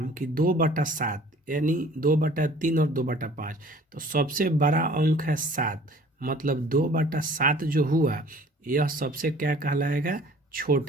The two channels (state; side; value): normal; both; correlation 0.51